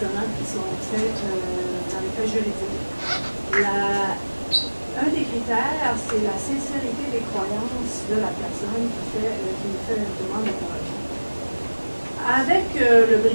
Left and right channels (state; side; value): inverted; both; correlation -1.00